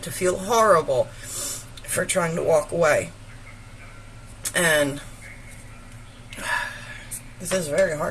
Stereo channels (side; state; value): both; identical; correlation 1.00